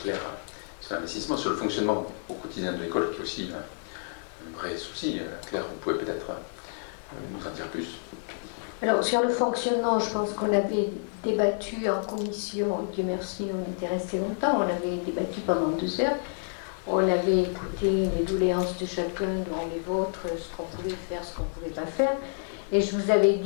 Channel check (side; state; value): right; silent; digital silence